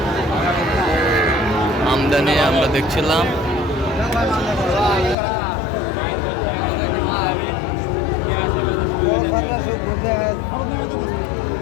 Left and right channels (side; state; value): right; drops out; at 5.2 s